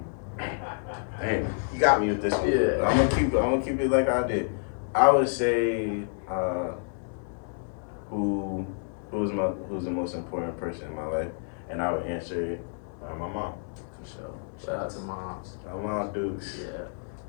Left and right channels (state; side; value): silent; right; digital silence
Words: Dang, you got me with this one. Yeah. But I'm gonna keep it like I did. I would say, who who's the most important person in my life, and I would answer it my mom. For sure. Shout out to moms. My mom Dukes. Yeah,